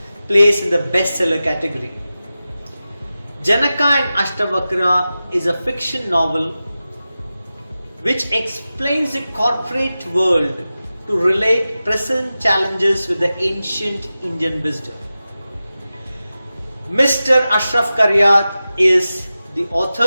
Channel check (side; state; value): both; inverted; correlation -0.94